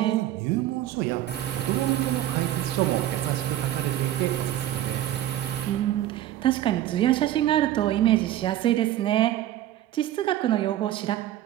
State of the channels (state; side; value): quieter; left; 13.1 dB